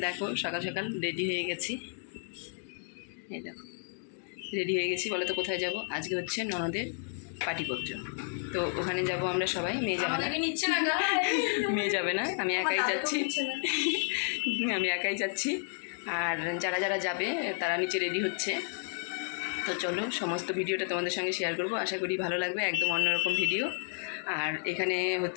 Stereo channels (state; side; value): silent; right; 57 dB below the other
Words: দেখো সকাল সকাল রেডি হয়ে গেছি। এই দেখো রেডি হয়ে গেছি। বলো তো কোথায় যাব? আজকে হচ্ছে ননদের পাটিপত্র, তো ওখানে যাব আমরা সবাই। মেয়ে যাবে না, মেয়ে যাবে না, আমি একাই যাচ্ছি। আমি একাই যাচ্ছি, আর যারা যারা যাবে তারা নিচে রেডি হচ্ছে। তো চলো সমস্ত ভিডিওটা তোমাদের সঙ্গে শেয়ার করব, আশা করি ভালো লাগবে। একদম অন্যরকম ভিডিও। আর এখানে